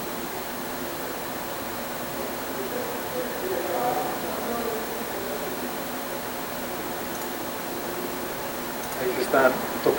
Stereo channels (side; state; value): both; identical; correlation 1.00